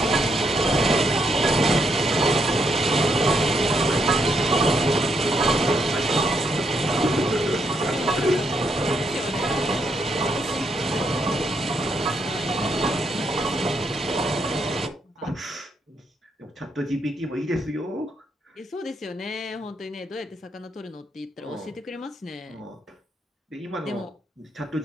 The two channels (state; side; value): normal; both; correlation 0.77